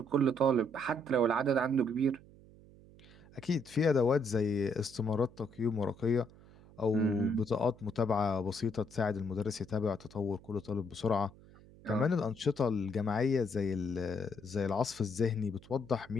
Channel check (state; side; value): noise; right; hum, 23 dB below the sound